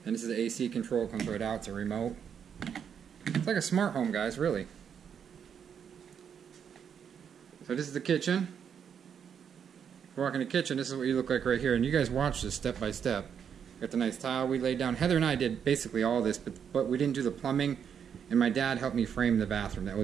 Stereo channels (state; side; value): quieter; left; 7.8 dB